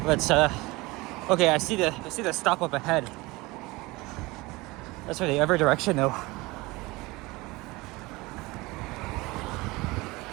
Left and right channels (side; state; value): left; quieter; 22.3 dB